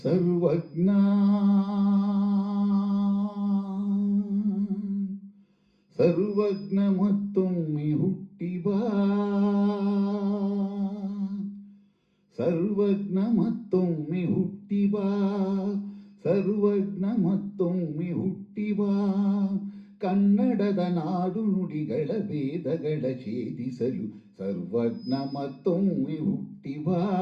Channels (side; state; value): both; identical; correlation 1.00